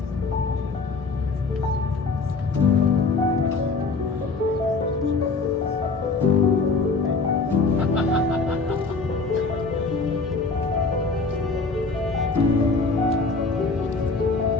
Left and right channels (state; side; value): quieter; right; 4.1 dB